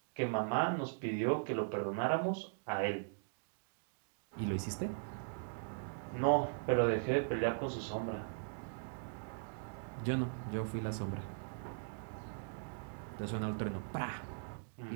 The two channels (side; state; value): left; silent; digital silence